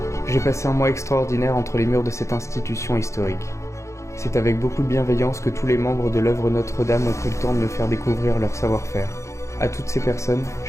J'ai passé un mois extraordinaire entre les murs de cette institution historique. C'est avec beaucoup de bienveillance que tous les membres de l'œuvre Notre-Dame ont pris le temps de me faire découvrir leur savoir-faire. À toutes ces personnes,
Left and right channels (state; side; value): late; right; 0.14 ms